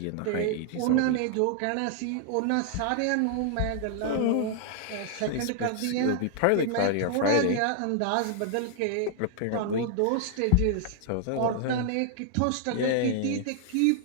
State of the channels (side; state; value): both; different; correlation 0.00